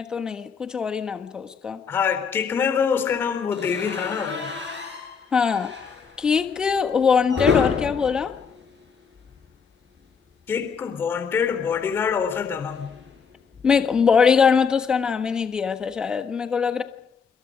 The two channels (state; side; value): quieter; right; 6.1 dB